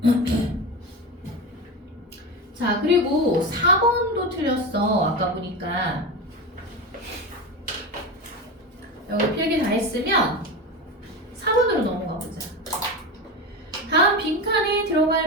자, 그리고 4번도 틀렸어. 아까 보니까. 여기 필기 다 했으면 4번으로 넘어가 보자. 다음 빈칸에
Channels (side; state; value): both; normal; correlation 0.22